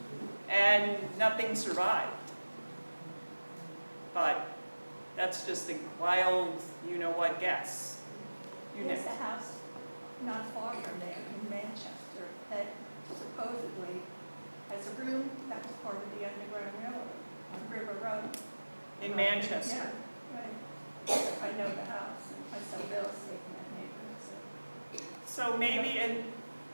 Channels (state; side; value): inverted; both; correlation -1.00